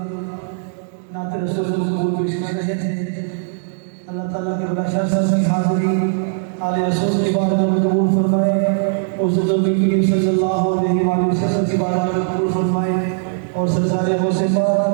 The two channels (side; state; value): left; silent; digital silence